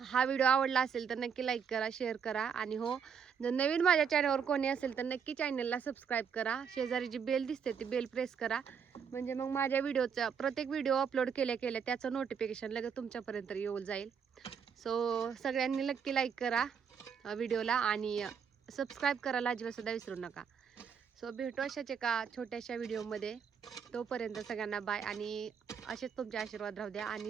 हा व्हिडिओ आवडला असेल तर नक्की लाईक करा, शेअर करा. आणि हो, जर नवीन माझ्या चॅनलवर कोणी असेल तर नक्की चॅनलला सबस्क्राईब करा. शेजारी जी बेल दिसते ती बेल प्रेस करा, म्हणजे मग माझ्या व्हिडिओचा प्रत्येक व्हिडिओ अपलोड केल्या त्याचं नोटिफिकेशन लगेच तुमच्यापर्यंत येऊन जाईल. सो सगळ्यांनी नक्की लाईक करा व्हिडिओला आणि सबस्क्राईब करायला अजिबात सुद्धा विसरू नका. सो भेटू अशाच एका छोट्याशा व्हिडिओमध्ये. तोपर्यंत सगळ्यांना बाय. आणि असेच तुमचे आशीर्वाद राहू द्या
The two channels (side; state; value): left; quieter; 7.0 dB